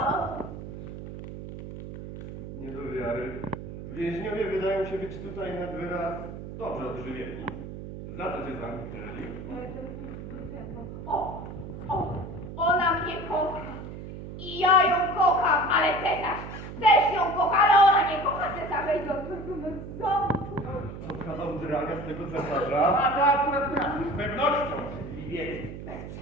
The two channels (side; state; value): right; noise; hum, 10 dB below the sound